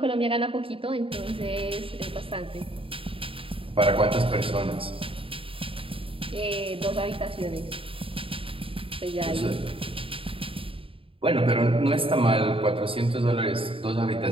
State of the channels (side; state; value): left; late; 0.26 ms